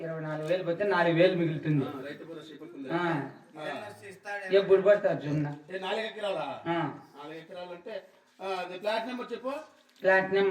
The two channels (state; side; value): identical; both; correlation 1.00